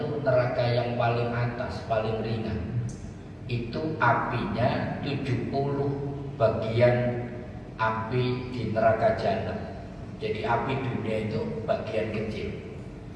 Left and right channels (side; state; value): both; identical; correlation 1.00